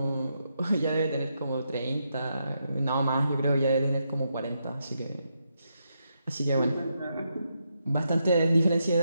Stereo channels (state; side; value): inverted; both; correlation -0.82